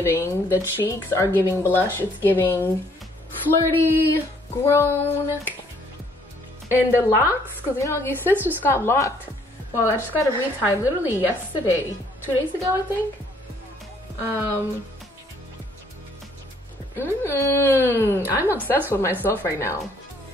the cheeks are giving blush. It's giving flirty, And the locks, because you know, your sis just got locked. Well, I just got a retie literally yesterday, 2 days ago, I think. I'm obsessed with myself right now.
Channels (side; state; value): both; normal; correlation 0.64